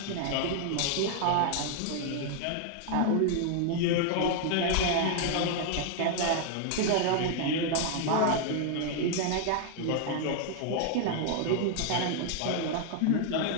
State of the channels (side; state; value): both; different; correlation 0.00